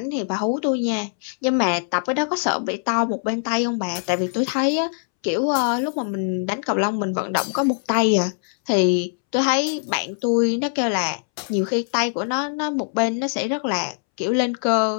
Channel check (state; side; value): silent; right; 64 dB below the other